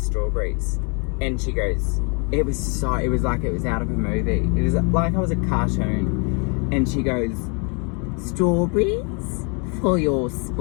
and she goes, it was like it was out of a movie. It was like I was a cartoon, and she goes, strawberries for your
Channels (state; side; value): quieter; right; 35.6 dB